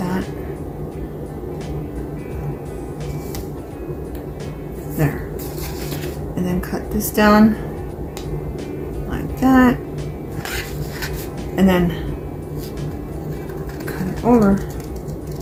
There. And then cut this down like that. And then cut it over.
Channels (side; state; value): both; identical; correlation 1.00